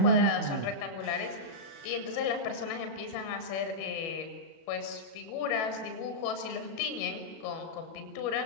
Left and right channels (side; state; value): right; late; 37 ms